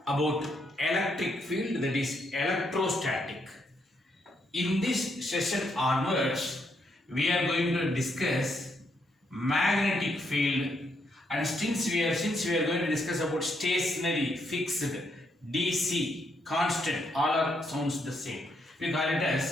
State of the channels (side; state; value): both; normal; correlation 0.76